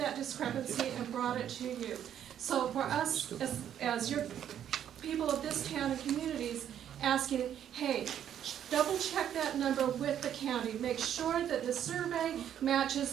discrepancy and brought it to you. So for us, as your people of this town and communities, asking, hey, double check that number with the county. Make sure that the survey matches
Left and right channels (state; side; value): quieter; left; 9.9 dB